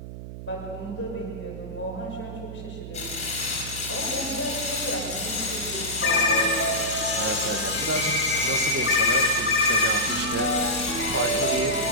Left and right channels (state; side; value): noise; right; hum, 10 dB below the sound